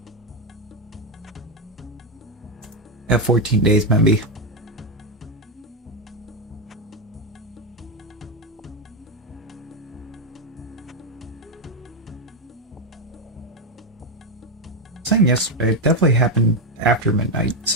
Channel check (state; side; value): normal; both; correlation 0.08